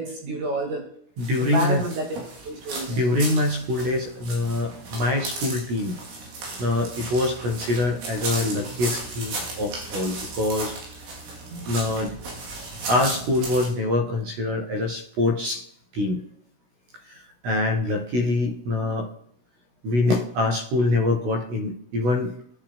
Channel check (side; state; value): left; late; 17 ms